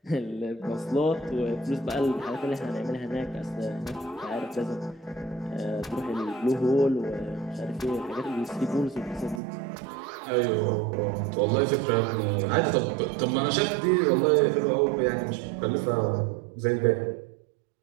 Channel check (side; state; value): left; drops out; at 9.4 s